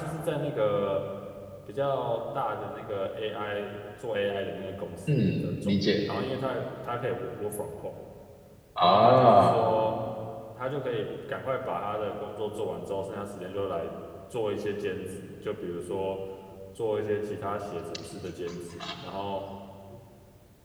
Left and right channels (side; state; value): both; identical; correlation 1.00